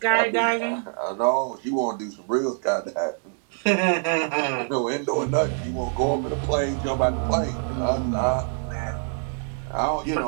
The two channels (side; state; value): left; silent; 61 dB below the other